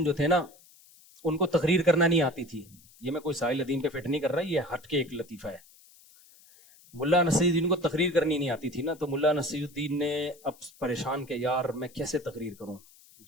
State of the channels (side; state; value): left; noise; hiss, 26 dB below the sound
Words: جو تھے نا, ان کو تقریر کرنا نہیں آتی تھی. یہ میں کوئی ساحل ادیم پہ فٹ نہیں کر رہا, یہ ہٹ کے ایک لطیفہ ہے. ملا نصیر الدین کو تقریر کرنی نہیں آتی تھی نا, تو ملا نصیر الدین نے اب پریشان کہ یار میں کیسے تقریر کروں.